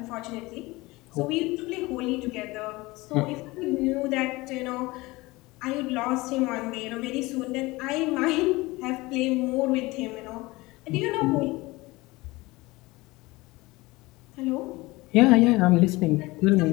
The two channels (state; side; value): quieter; right; 21.6 dB